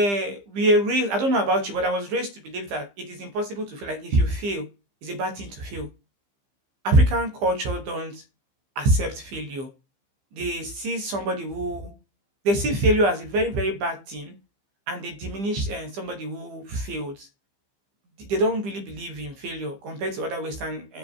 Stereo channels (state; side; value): late; left; 15 ms